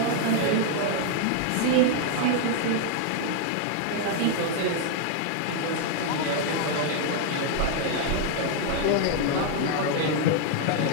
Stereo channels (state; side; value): different; both; correlation 0.00